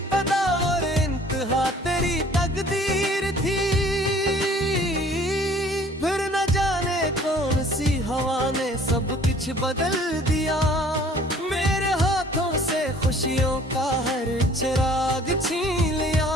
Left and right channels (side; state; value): both; normal; correlation 0.53